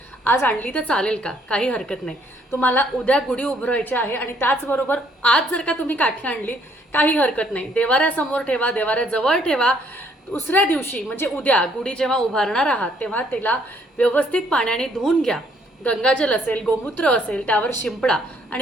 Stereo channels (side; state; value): both; normal; correlation 0.66